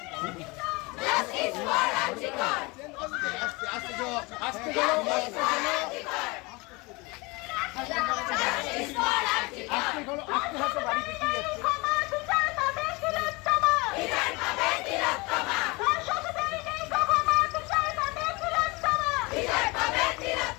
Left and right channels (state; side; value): quieter; right; 25.7 dB